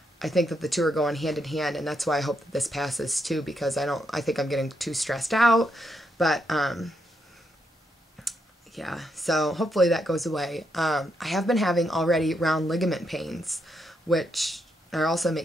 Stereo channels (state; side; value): normal; both; correlation 0.79